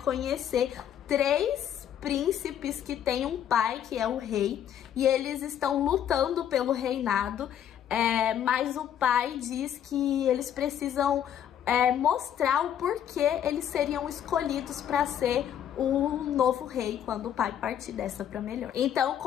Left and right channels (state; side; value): quieter; right; 9.9 dB